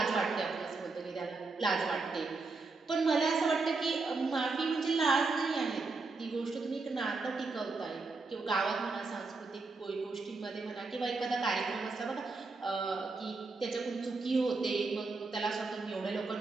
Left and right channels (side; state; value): left; quieter; 3.9 dB